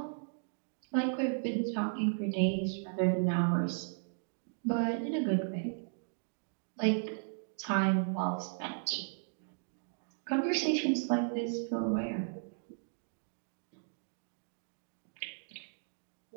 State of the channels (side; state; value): left; silent; digital silence